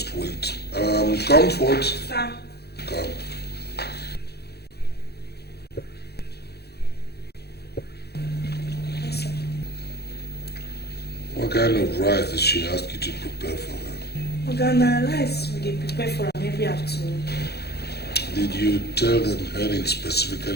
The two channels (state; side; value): late; right; 0.47 ms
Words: wait. Comfort. Sir. Come. she asked you to prepare for her? Organa rice we dey prepare for am every afternoon. Did you tell them Helen